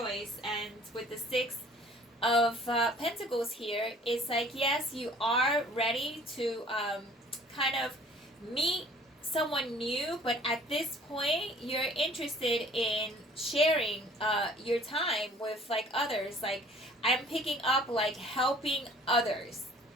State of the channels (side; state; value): both; normal; correlation 0.53